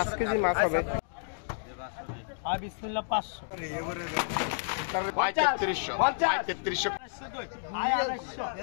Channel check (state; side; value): silent; right; digital silence